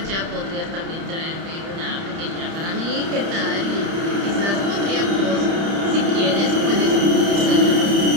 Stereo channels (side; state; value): left; late; 30 ms